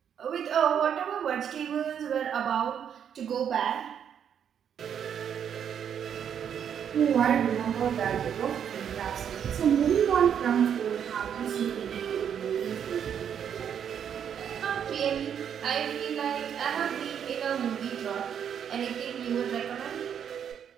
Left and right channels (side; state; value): left; quieter; 8.4 dB